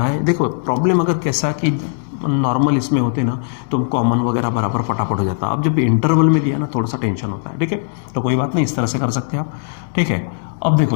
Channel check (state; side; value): silent; right; digital silence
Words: है, देखो प्रॉब्लम अगर कैसा कि नॉर्मल इसमें होते ना तो कॉमन वगैरह बराबर फटाफट हो जाता, अब जब इंटरवल में दिया ना थोड़ा सा टेंशन होता है, ठीक है, तो कोई बात नहीं, इस तरह से कर सकते हैं आप, ठीक है। अब